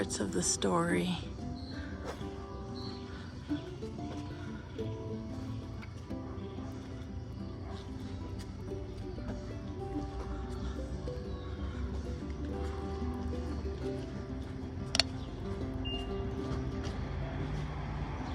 of the story.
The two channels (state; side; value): identical; both; correlation 1.00